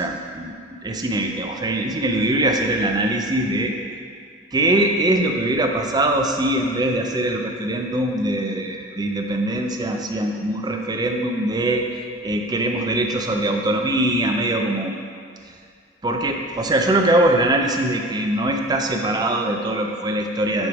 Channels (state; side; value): normal; both; correlation 0.37